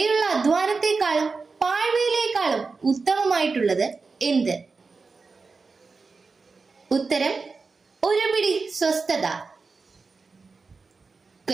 അധ്വാനത്തെക്കാളും പാഴ്വയിലേക്കാളും ഉത്തമമായിട്ടുള്ളത് എന്ത്? ഉത്തരം ഒരു പിടി സ്വസ്ഥത.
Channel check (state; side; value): quieter; left; 4.4 dB